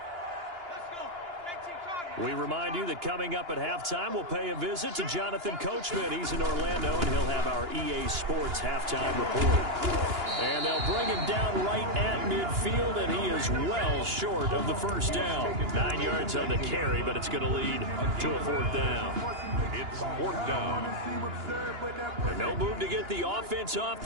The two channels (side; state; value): left; late; 2.9 ms